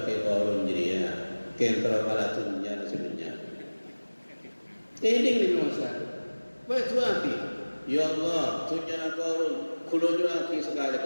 Korun jadi kentral malatunnya sebenarnya. Ini Nabi Musa. Baik api. Ya Allah, tunya Korun, kulunya api sekali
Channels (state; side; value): inverted; both; correlation -1.00